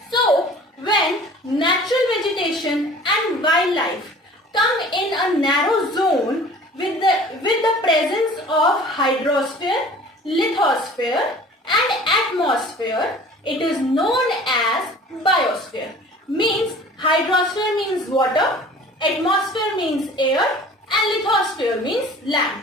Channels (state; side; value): normal; both; correlation 0.46